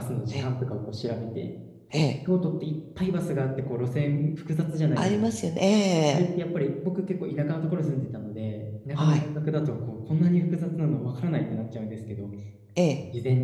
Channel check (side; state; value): both; identical; correlation 1.00